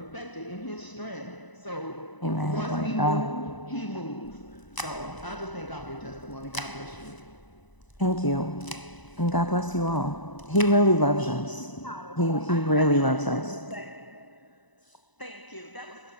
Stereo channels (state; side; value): late; right; 1.0 ms